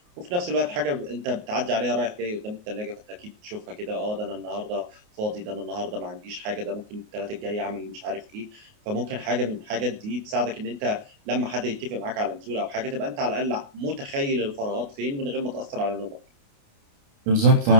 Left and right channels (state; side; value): late; left; 29 ms